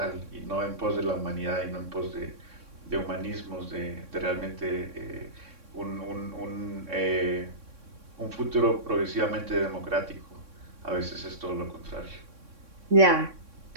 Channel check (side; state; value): left; late; 3.6 ms